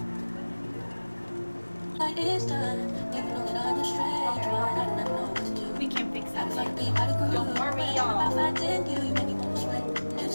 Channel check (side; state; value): both; inverted; correlation -1.00